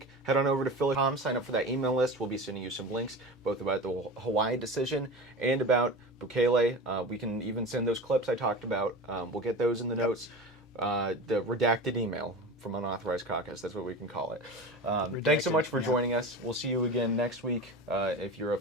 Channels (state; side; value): normal; both; correlation 0.30